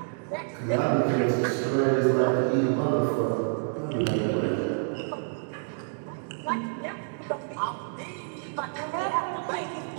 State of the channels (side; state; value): left; silent; 59 dB below the other